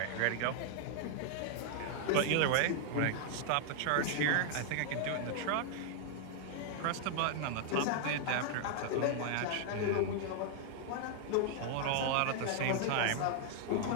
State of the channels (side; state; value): both; different; correlation 0.00